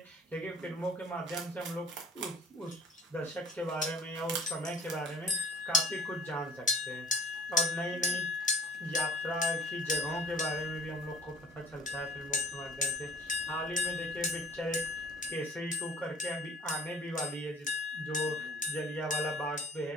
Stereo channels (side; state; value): both; normal; correlation 0.49